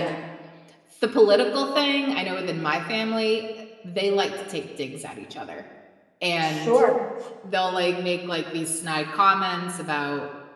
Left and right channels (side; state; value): both; identical; correlation 1.00